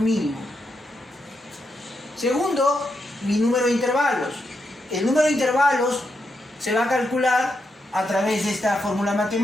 Segundo, mi número de intervalos. El número de intervalos se va a calcular a través de esta fórmula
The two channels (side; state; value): both; normal; correlation 0.83